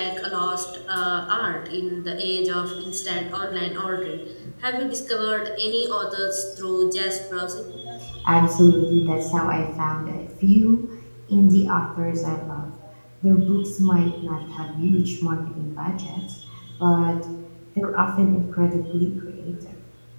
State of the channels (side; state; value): both; inverted; correlation -1.00